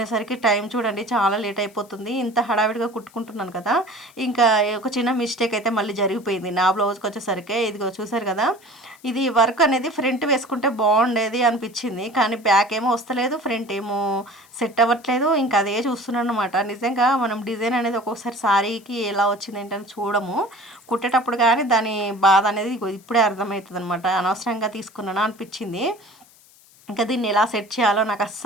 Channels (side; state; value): left; noise; hiss, 27 dB below the sound